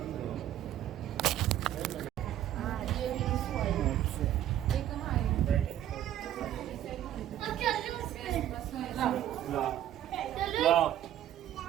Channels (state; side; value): quieter; left; 11.9 dB